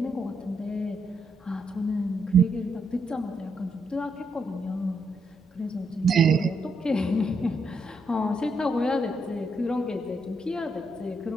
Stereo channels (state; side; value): normal; both; correlation 0.78